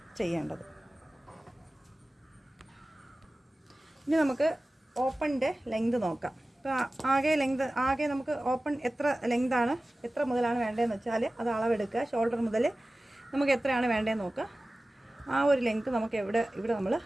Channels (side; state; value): both; normal; correlation 0.97